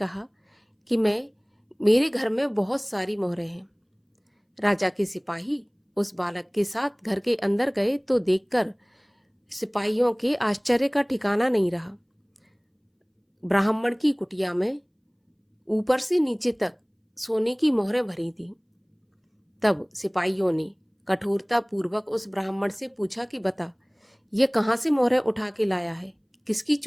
कि मेरे घर में बहुत सारी मोहरें हैं। राजा के सिपाही उस बालक के साथ घर के अंदर गए तो देखकर सिपाहियों के आश्चर्य का ठिकाना नहीं रहा। ब्राह्मण की कुटिया में ऊपर से नीचे तक सोने की मोहरें भरी थी। तब सिपाहियों ने कठोरता पूर्वक उस ब्राह्मण से पूछा कि बता, ये कहाँ से मोहरें उठा के लाया है, किसकी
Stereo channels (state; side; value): identical; both; correlation 1.00